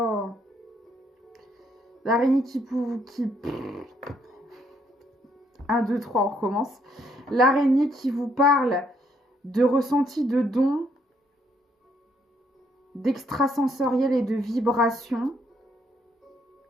L'araignée qui... 1, 2, 3, on recommence. L'araignée qui vous parle de ressenti de dons, d'extrasensoriel et de vibration.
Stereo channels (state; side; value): normal; both; correlation 0.71